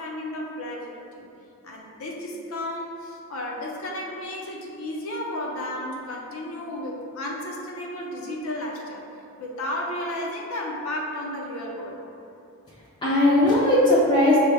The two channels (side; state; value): both; normal; correlation 0.26